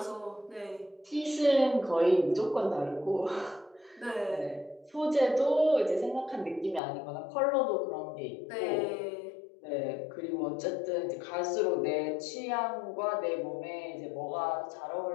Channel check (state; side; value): drops out; right; at 6.8 s